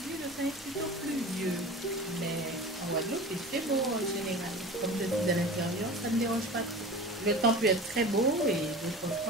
C'est plutôt pluvieux, mais en Guadeloupe, il fait beau en général. Comme je suis à l'intérieur, ça ne me dérange pas trop. Le temps peut être très beau et d'autres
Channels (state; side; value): normal; both; correlation 0.35